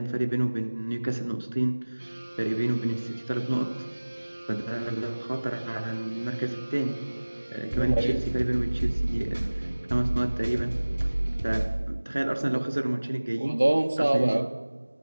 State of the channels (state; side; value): inverted; both; correlation -1.00